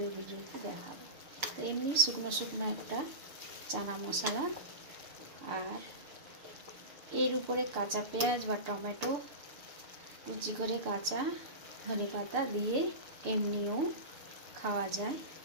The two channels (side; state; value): left; late; 6.7 ms